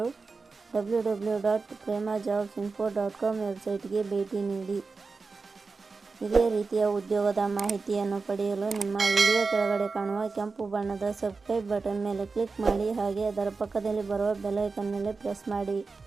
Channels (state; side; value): quieter; left; 4.3 dB